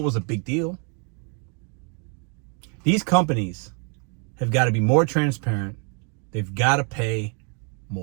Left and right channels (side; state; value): left; quieter; 37.8 dB